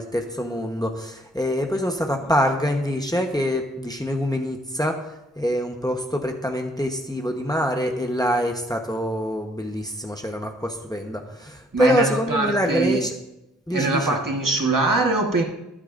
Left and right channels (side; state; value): both; normal; correlation 0.62